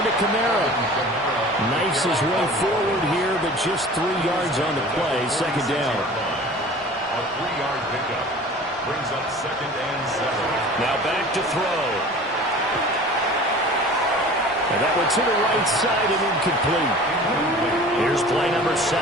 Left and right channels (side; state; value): both; normal; correlation 0.42